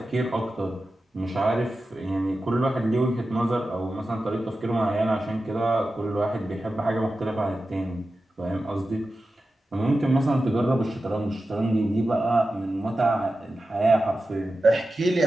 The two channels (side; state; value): both; normal; correlation 0.93